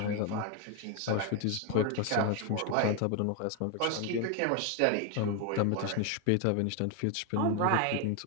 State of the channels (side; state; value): both; different; correlation 0.01